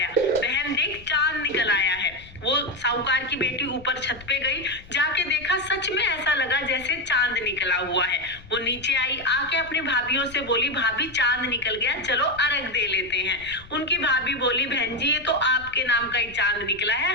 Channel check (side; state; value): left; noise; rumble, 20 dB below the sound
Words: बहन देख चांद निकल आया है। वो साहूकार की बेटी ऊपर छत पे गई, जाके देखा सच में ऐसा लगा जैसे चांद निकला हुआ है। वो नीचे आई, आके अपनी भाभियों से बोली, भाभी चांद निकल गया, चलो अर्घ दे लेते हैं। उनकी भाभी बोली, बहन जी ये तो आपके नाम का ही चांद निकला